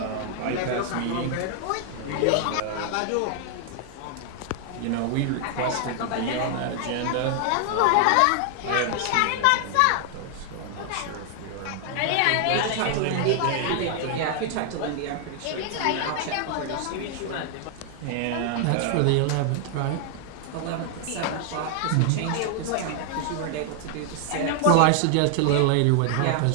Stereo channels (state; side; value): different; both; correlation 0.00